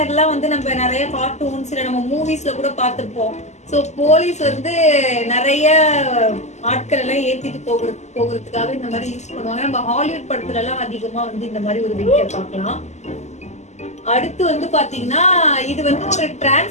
வந்து நம்ம நிறைய கார்ட்டூன்ஸ் இல்ல நம்ம மூவிஸ்ல கூட பார்த்திருப்போம். சோ போலீஸ் வந்து நிறைய ஆட்கள் எல்லாம் ஏத்திட்டு போகிறதுக்காக இந்த மாதிரி யூஸ் பண்ணுவாங்க. நம்ம ஹாலிவுட் படத்துல எல்லாம் அதிகமா வந்து இந்த மாதிரி ஒரு வெஹிக்கிள் பார்க்கலாம். அடுத்து வந்து பாத்தீங்கன்னா இது வந்து ஒரு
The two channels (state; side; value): late; right; 0.33 ms